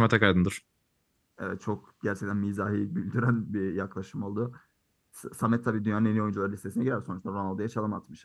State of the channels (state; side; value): identical; both; correlation 1.00